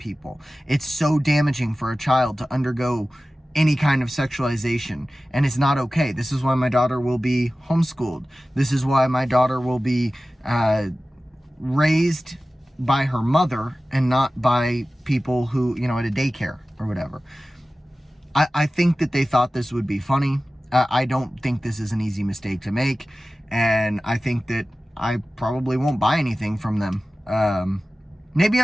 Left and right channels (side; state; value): both; normal; correlation 0.96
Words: It's so damaging for a child to undergo any kind of sexualization, and it's not okay. This is why my daughter will be homeschooled. This is why my daughter will be raised by her mother and not by people who, you know, at a daycare or whatever. I think that they thought this would be funny. I don't think this is an easy mistake to make, and I think that I probably won't buy anything from them. Maybe